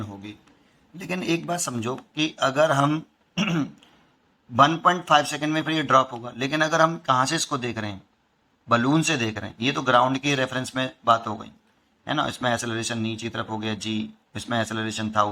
होगी। लेकिन एक बात समझो कि अगर हम 1.5 सेकंड में फिर ये ड्रॉप होगा, लेकिन अगर हम कहाँ से इसको देख रहे हैं, बलून से देख रहे हैं, ये तो ग्राउंड के रेफरेंस में बात हो गई, है ना। इसमें एक्सेलरेशन नीचे की तरफ हो गया g, इसमें एक्सेलरेशन था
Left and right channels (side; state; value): both; identical; correlation 1.00